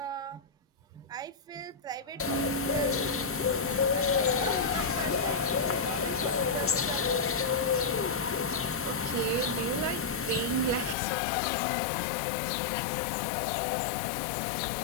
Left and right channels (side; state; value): right; drops out; at 11.0 s